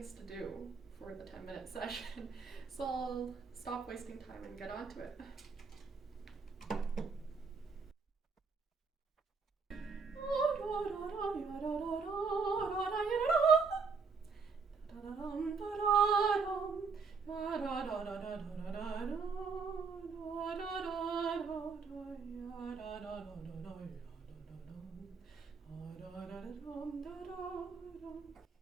to do for the 10-minute session. So I'll stop wasting time and get on to it.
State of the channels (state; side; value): quieter; left; 5.0 dB